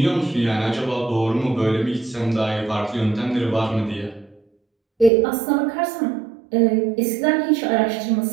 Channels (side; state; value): left; drops out; at 5.1 s